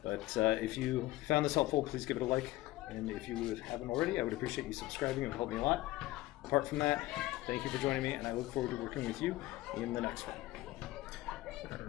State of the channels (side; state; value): right; quieter; 17.4 dB